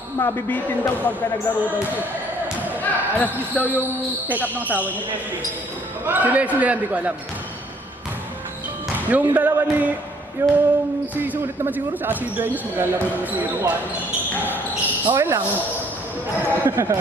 mabibitin daw pagka naglaro daw siya. Alas 10 daw yung check up ng asawa niya. Si Leslie yan, di ko alam. Yung dalawa ni yung si Sulit naman siguro sa si Dueñas maglalaro naman siguro. Okay lang.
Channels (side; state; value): both; normal; correlation 0.61